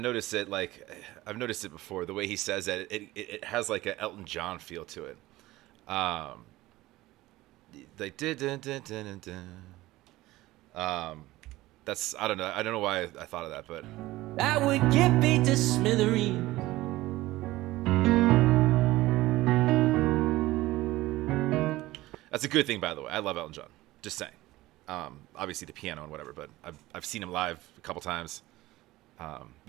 it, like, I've noticed it before, the way he says that, it has like an Elton John feel to it. Like, that's, I don't know why I thought of that, but I would get beat to smithereens. that's a good thing, by the way. I love Elton John. Just saying. Obviously the piano and whatever, but I've seen him live a couple times. But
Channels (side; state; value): left; quieter; 17.9 dB